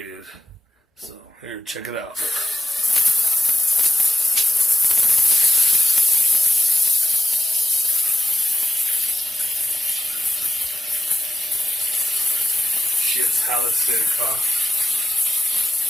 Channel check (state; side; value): normal; both; correlation 0.95